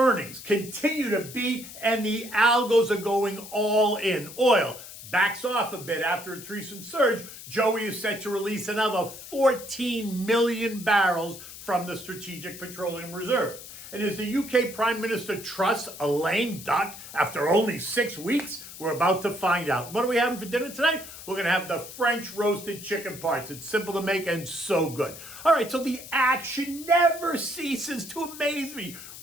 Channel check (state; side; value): noise; left; hiss, 14 dB below the sound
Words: continue to beat, and the algos are going all in. Oil backs off a bit after its recent surge. Joey is set to release another 14 million barrels from the Strategic Petroleum Reserve. And as the UK Prime Minister trusts a lame duck after only 6 weeks? We're about to find out. What are we having for dinner tonight? We're going to have the French roasted chicken parts. It's simple to make and so good. All right, so the action never ceases to amaze me.